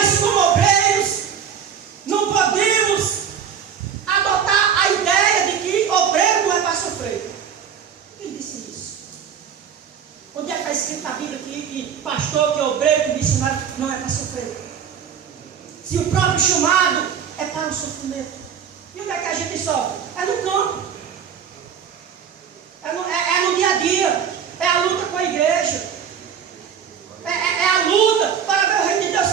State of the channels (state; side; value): quieter; left; 7.8 dB